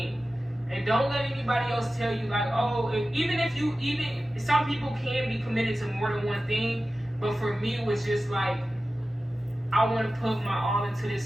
And don't let anybody else tell you like, oh, even some people can be committed to more than one thing, but for me it was just like, I want to put my all into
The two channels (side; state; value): both; normal; correlation 0.95